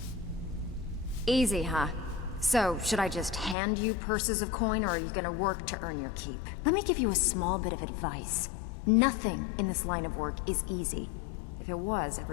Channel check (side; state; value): right; drops out; at 3.6 s